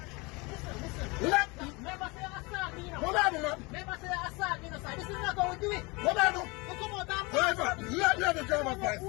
Listen. Never say assault me, you know. What I do, man? Never say assault me, you know, sir. This is not how we do it. What I do? You come out and Driver, let me have the driver's who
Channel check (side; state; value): right; quieter; 26.4 dB